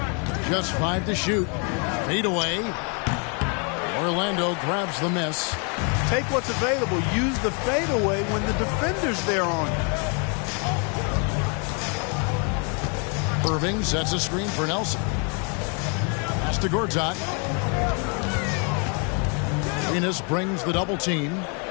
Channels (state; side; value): quieter; right; 36.8 dB